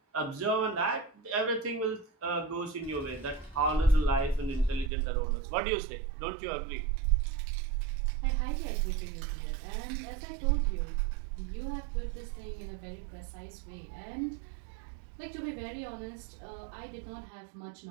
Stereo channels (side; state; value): left; drops out; at 4.9 s